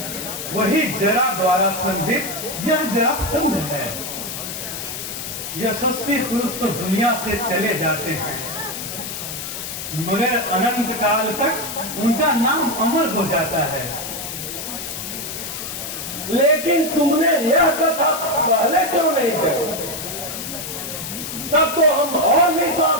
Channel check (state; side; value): noise; left; hiss, 7 dB below the sound